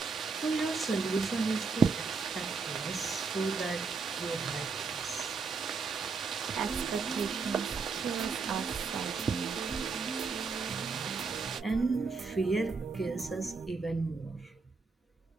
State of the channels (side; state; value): left; quieter; 4.7 dB